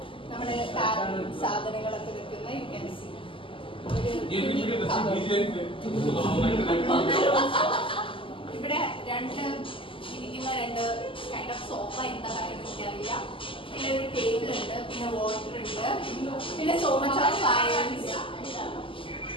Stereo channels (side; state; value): right; late; 0.25 ms